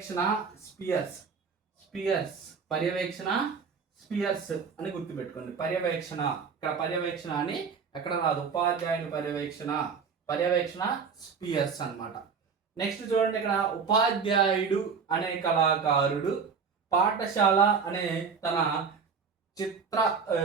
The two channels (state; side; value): quieter; left; 5.8 dB